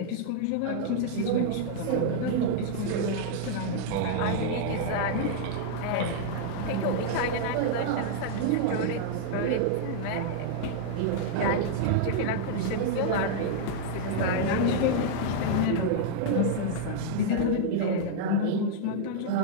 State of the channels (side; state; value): both; different; correlation -0.01